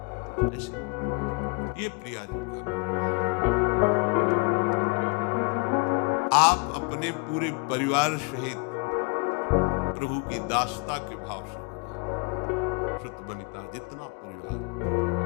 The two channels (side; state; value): right; quieter; 33.0 dB